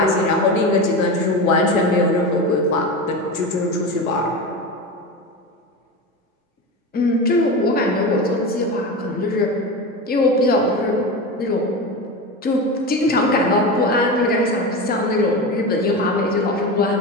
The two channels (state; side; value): normal; both; correlation 0.23